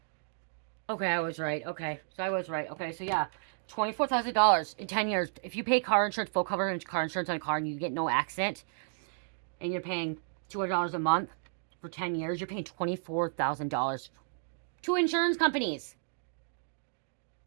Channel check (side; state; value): left; silent; digital silence